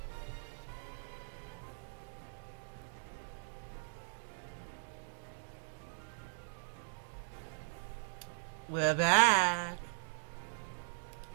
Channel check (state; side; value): silent; left; digital silence